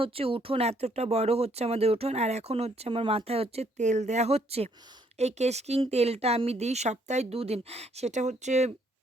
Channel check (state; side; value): normal; both; correlation 0.68